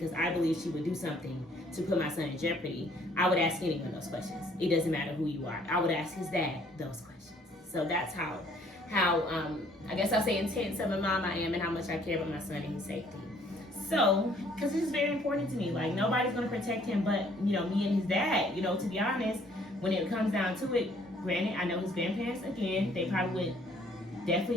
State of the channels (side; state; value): both; normal; correlation 0.61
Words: I believe she would do something to put my son in jeopardy. I would ask anyone those questions. It doesn't matter who you are. I would ask his dad those questions. So that's how I guess I'll say intense of a mom I am and how much I care about my son and his safety. So, because this is very important to me. Like, nobody's going to protect him but, you know, me and his dad. You know, to be honest, when it comes down to it, granted, I know his grandparents, again, they probably would